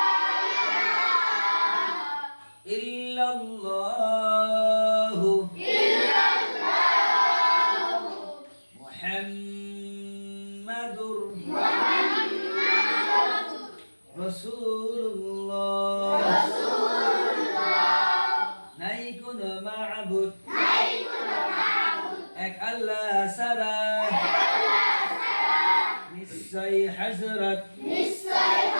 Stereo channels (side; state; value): both; inverted; correlation -1.00